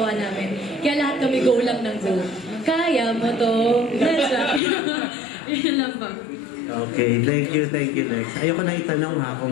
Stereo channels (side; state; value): right; drops out; at 4.6 s